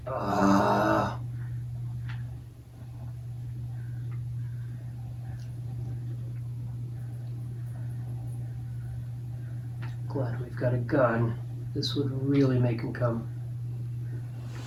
Glad we've got a gun. This would really make him come.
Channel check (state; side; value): identical; both; correlation 1.00